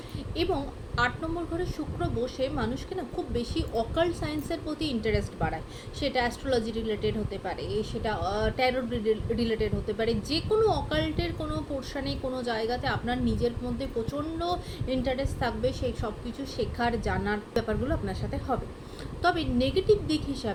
এবং 8 নম্বর ঘরে শুক্র বসে মানুষকে না খুব বেশি অকাল্ট সায়েন্সের প্রতি ইন্টারেস্ট বাড়ায়। সেটা অ্যাস্ট্রোলজি রিলেটেড হতে পারে, সেটা ট্যারো রিলেটেড হতে পারে, যে কোনো অকাল্টের কোনো পোর্শনে কোনো জায়গাতে আপনার নিজের মধ্যে প্রচণ্ড ইন্টারেস্ট থাকবে, সেই সব কিছু শেখার জানার ব্যাপারগুলো আপনার সাথে হবে। তবে নেগেটিভ দিক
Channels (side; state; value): both; identical; correlation 1.00